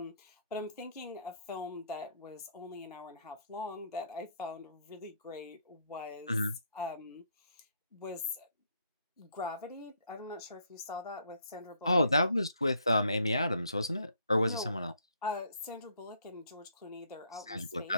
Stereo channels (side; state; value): both; inverted; correlation -0.69